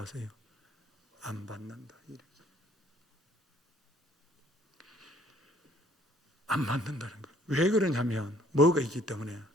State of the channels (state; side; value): normal; both; correlation 0.60